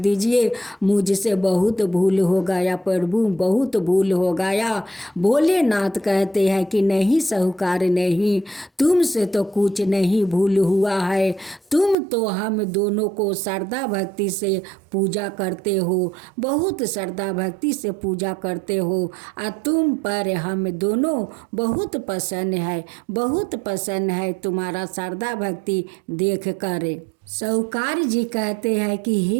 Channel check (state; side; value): drops out; left; at 12.0 s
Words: मुझसे बहुत भूल हो गया प्रभु, बहुत भूल हो गया। भोलेनाथ कहते हैं कि नहीं साहूकार नहीं, तुमसे तो कुछ नहीं भूल हुआ है, तुम तो हम दोनों को श्रद्धा भक्ति से पूजा करते हो, बहुत श्रद्धा भक्ति से पूजा करते हो और तुम पर हम दोनों बहुत पसंद है, बहुत पसंद है तुम्हारा श्रद्धा भक्ति देख कर। साहूकार जी कहते हैं कि